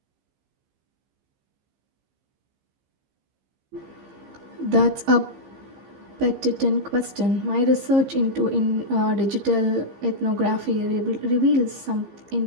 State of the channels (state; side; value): late; left; 15 ms